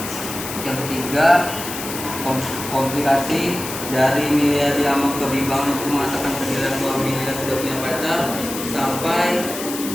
Yang ketiga komplikasi dari Milea diamuk kebimbangan untuk mengatakan ke Dilan bahwa Milea sudah punya pacar sampai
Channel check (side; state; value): left; noise; hiss, 8 dB below the sound